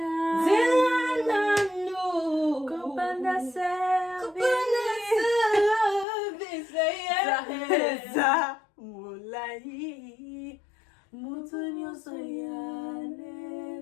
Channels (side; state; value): right; drops out; at 6.1 s